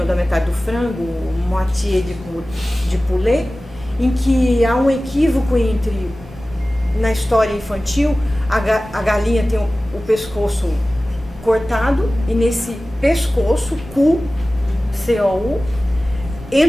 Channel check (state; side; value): normal; both; correlation 0.97